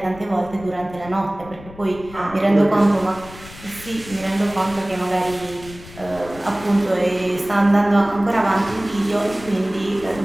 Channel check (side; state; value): left; noise; rumble, 18 dB below the sound